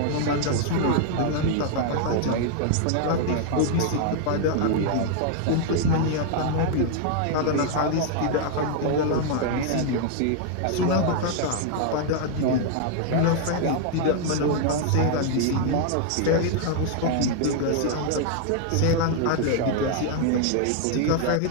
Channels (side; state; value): both; different; correlation 0.00